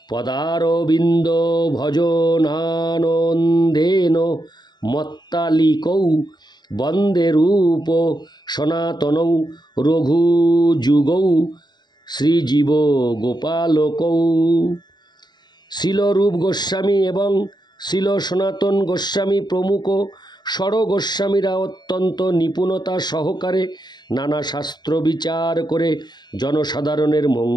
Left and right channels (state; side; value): late; right; 0.21 ms